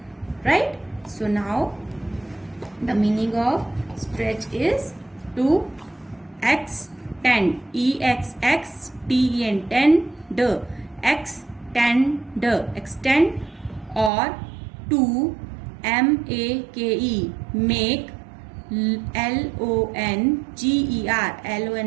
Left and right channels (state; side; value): drops out; left; at 14.1 s